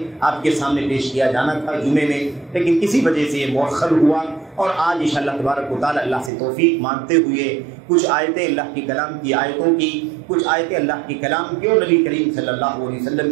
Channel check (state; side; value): drops out; left; at 6.3 s